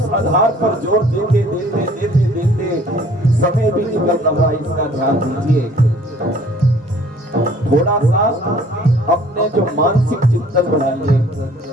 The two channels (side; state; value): both; normal; correlation 0.55